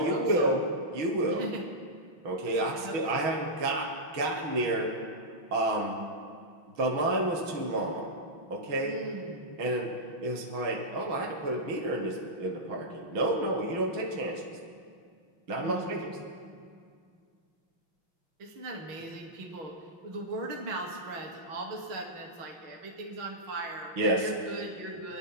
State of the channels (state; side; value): late; left; 6.2 ms